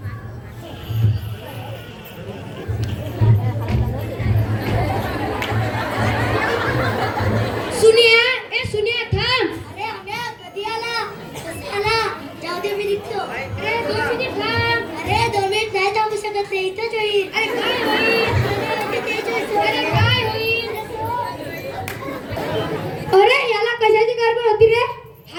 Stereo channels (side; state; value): both; identical; correlation 1.00